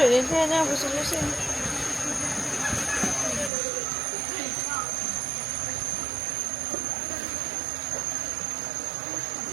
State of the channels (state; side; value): drops out; left; at 3.5 s